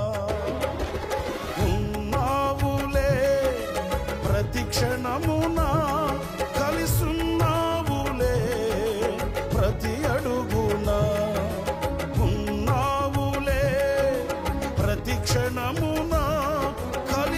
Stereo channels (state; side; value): identical; both; correlation 1.00